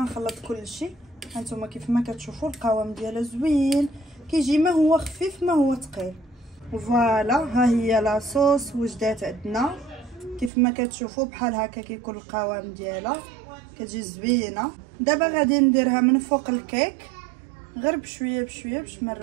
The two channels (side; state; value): left; drops out; at 10.5 s